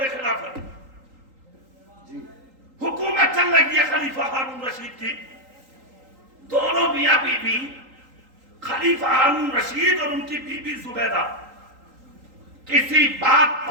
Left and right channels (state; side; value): late; left; 3.8 ms